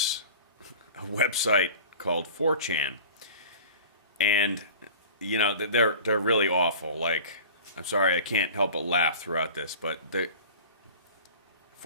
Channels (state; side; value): inverted; both; correlation -0.39